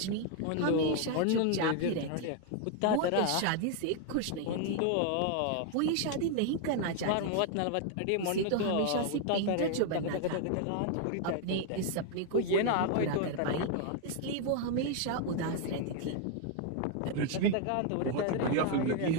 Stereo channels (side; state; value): both; different; correlation 0.00